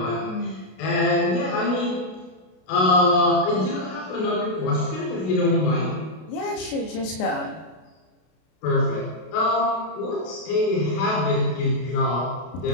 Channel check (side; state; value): right; late; 32 ms